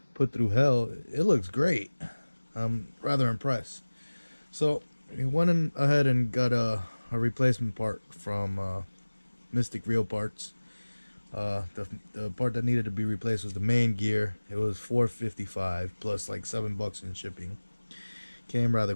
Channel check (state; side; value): inverted; both; correlation -1.00